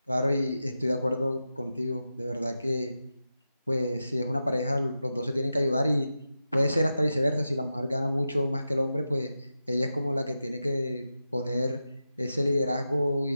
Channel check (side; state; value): both; inverted; correlation -0.91